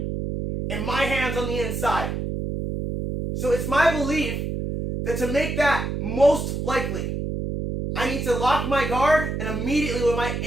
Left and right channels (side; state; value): right; noise; hum, 3 dB below the sound